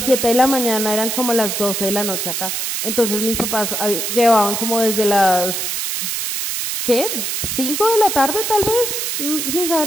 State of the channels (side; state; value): right; noise; hiss, 2 dB below the sound